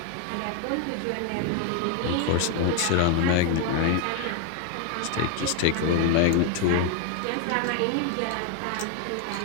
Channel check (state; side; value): different; both; correlation 0.00